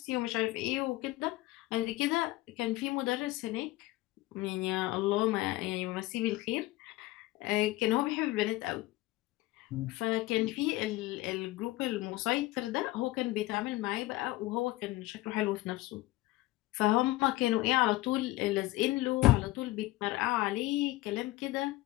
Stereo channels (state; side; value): quieter; right; 18.7 dB